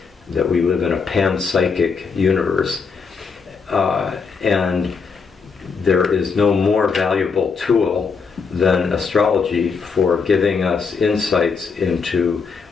we live in a panpsychic universe, and there is no more valuable tool than astrology for giving us insights into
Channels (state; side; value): quieter; right; 5.3 dB